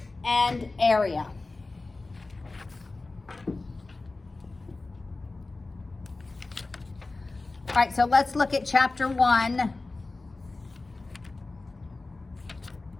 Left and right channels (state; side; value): quieter; right; 3.4 dB